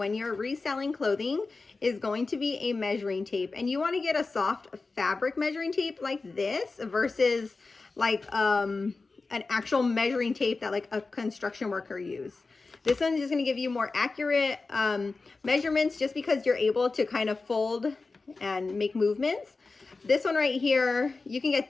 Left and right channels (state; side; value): quieter; right; 3.9 dB